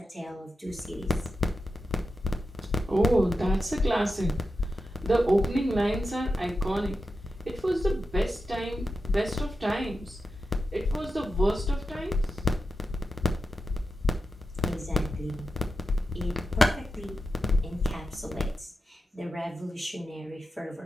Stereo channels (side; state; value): both; normal; correlation 0.90